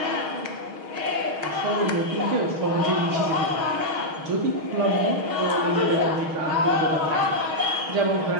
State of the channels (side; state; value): left; late; 6.4 ms